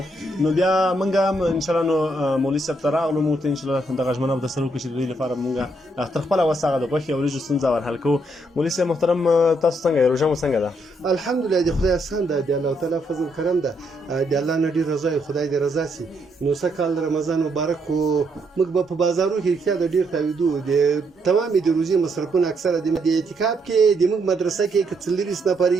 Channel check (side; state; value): both; normal; correlation 0.75